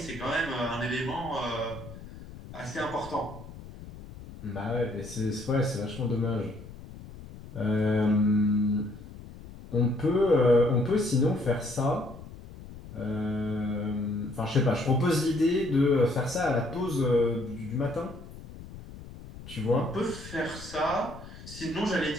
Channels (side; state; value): left; noise; rumble, 15 dB below the sound